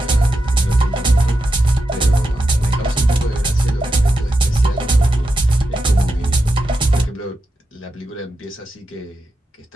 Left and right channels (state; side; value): normal; both; correlation 0.87